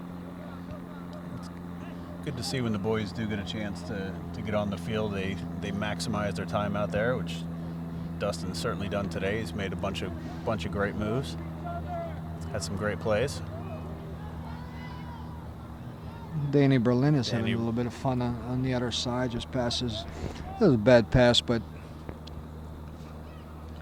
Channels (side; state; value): both; identical; correlation 1.00